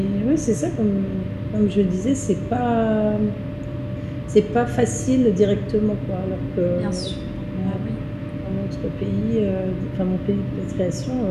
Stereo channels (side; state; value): both; identical; correlation 1.00